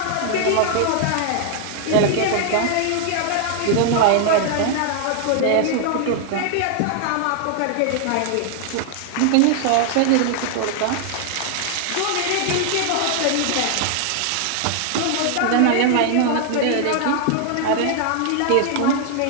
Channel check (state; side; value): different; both; correlation 0.00